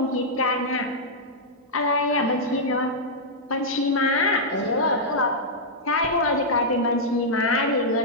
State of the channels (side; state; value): both; normal; correlation -0.08